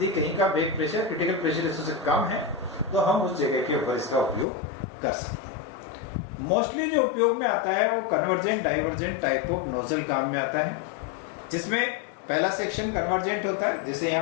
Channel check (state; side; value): drops out; right; at 4.5 s